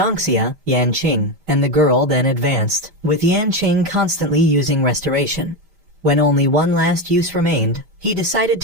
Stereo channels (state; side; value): late; left; 5.0 ms